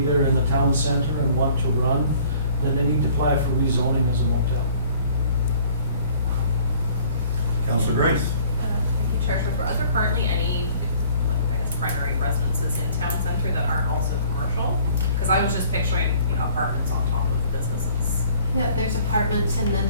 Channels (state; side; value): inverted; both; correlation -0.54